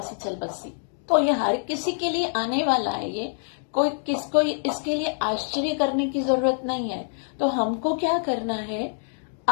चल बसी। तो ये हर किसी के लिए आने वाला है। ये कोई किसको इसके लिए आश्चर्य करने की जरूरत नहीं है। तो हमको क्या करना है,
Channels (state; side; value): silent; right; digital silence